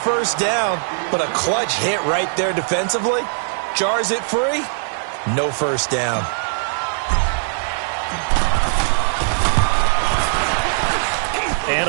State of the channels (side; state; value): left; silent; digital silence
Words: down, but a clutch hit right there defensively. Jars it free. No first down.